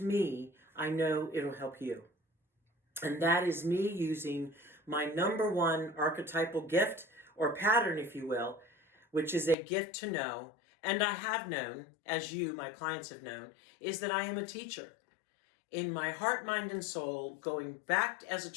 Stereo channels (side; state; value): right; drops out; at 9.6 s